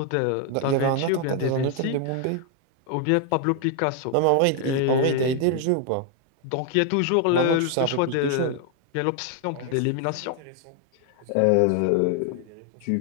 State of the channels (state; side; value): different; both; correlation 0.00